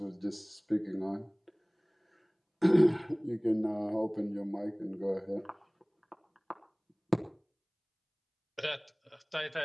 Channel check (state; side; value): identical; both; correlation 1.00